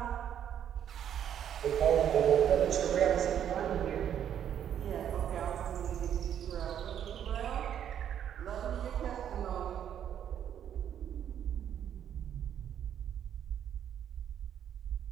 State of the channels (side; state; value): left; quieter; 9.6 dB